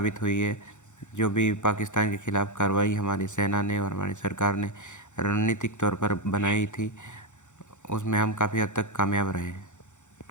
हुई है। जो भी पाकिस्तान के खिलाफ कार्रवाई हमारी सेना ने और हमारी सरकार ने रणनीतिक तौर पर बनाई थी, उसमें हम काफ़ी हद तक कामयाब रहे हैं।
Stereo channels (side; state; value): right; late; 0.85 ms